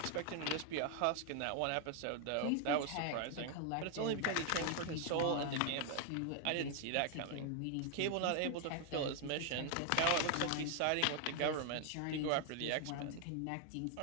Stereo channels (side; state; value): both; different; correlation 0.00